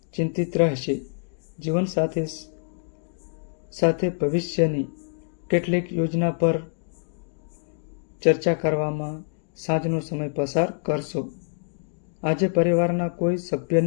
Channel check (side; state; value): right; silent; digital silence